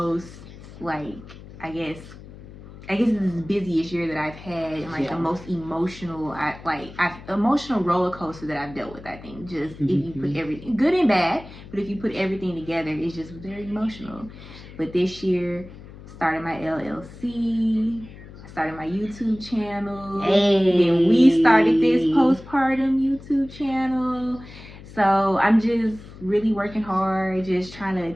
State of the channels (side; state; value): left; noise; hum, 17 dB below the sound